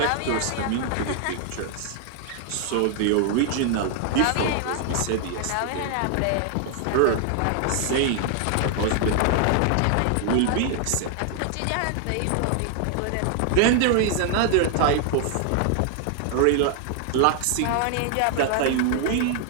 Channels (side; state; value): both; different; correlation 0.00